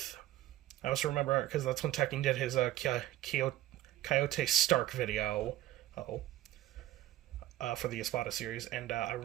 I also remember, because that's when Tekken did his Coyote Stark video for the Espada series, and I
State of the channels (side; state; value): left; quieter; 14.7 dB